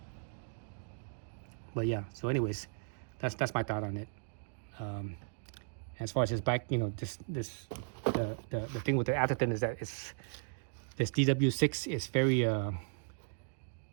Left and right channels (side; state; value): left; silent; digital silence